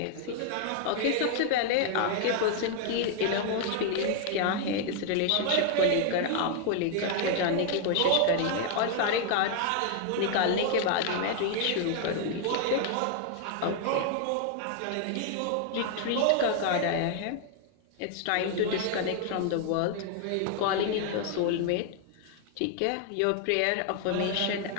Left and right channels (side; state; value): both; different; correlation 0.00